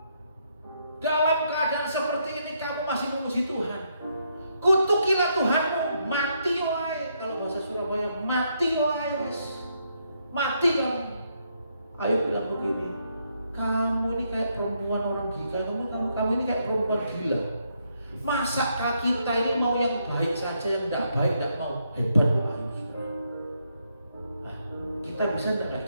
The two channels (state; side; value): inverted; both; correlation -0.76